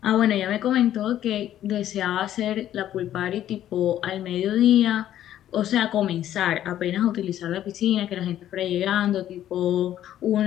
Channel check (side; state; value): right; quieter; 11.8 dB